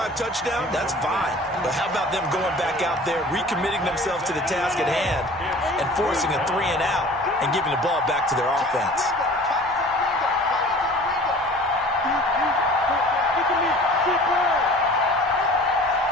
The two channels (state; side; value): normal; both; correlation 0.45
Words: touchdown, that's fine. But how about them going back out there, recommitting themselves to the task at hand, and forcing a 3-and-out and giving the ball back to their offense?